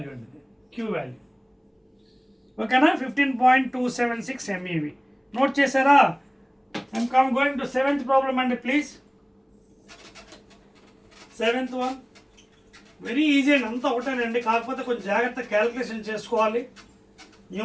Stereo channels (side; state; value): both; identical; correlation 1.00